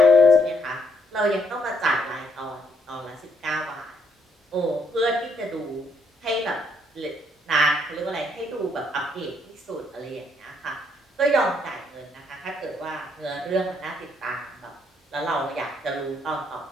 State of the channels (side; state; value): both; normal; correlation 0.72